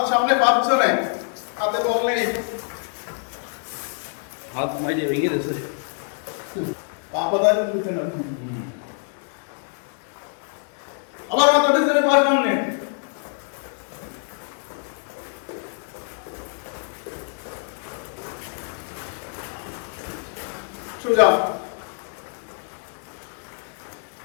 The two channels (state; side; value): silent; right; 57 dB below the other